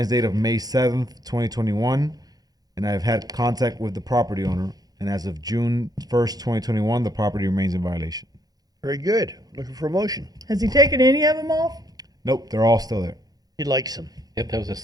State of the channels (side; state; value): left; late; 0.19 ms